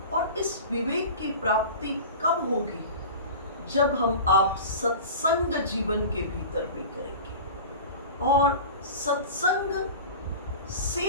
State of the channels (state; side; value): inverted; both; correlation -0.34